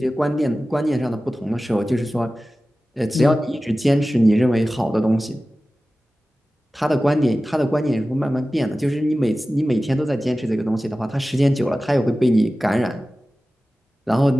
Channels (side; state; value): both; normal; correlation 0.96